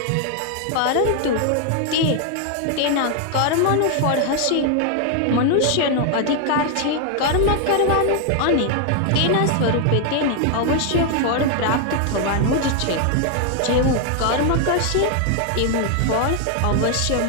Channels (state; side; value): different; both; correlation 0.00